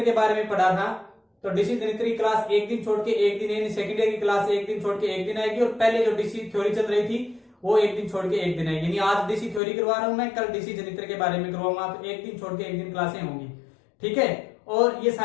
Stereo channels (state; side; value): drops out; right; at 9.6 s